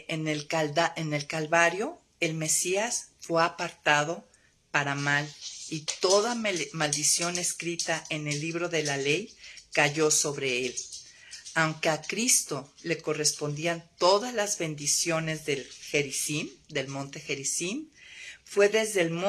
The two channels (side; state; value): both; identical; correlation 1.00